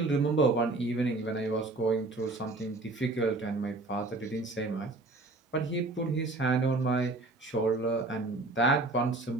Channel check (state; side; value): quieter; left; 3.1 dB